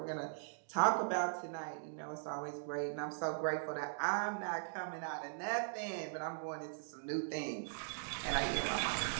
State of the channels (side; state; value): left; silent; digital silence